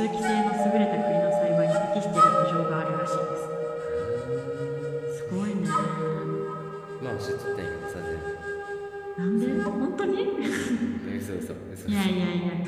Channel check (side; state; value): both; identical; correlation 1.00